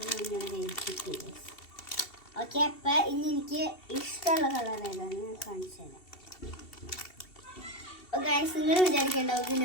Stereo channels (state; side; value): late; right; 2.7 ms